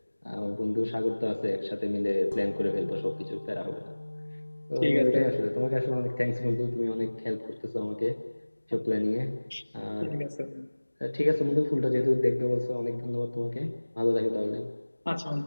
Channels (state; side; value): inverted; both; correlation -1.00